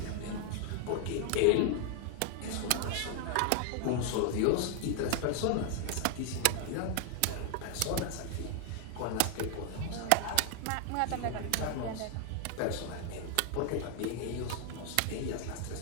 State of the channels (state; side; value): different; both; correlation 0.00